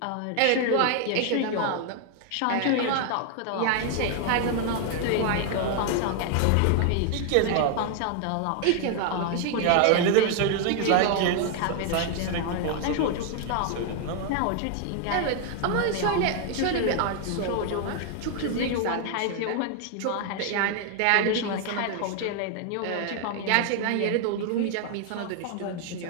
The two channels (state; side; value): different; both; correlation 0.00